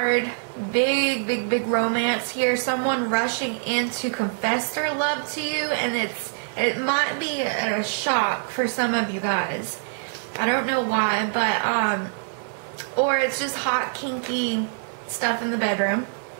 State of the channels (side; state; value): left; silent; digital silence